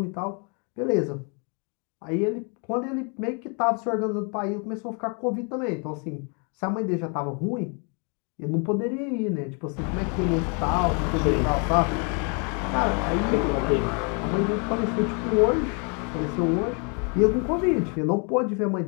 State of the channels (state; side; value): quieter; right; 36.6 dB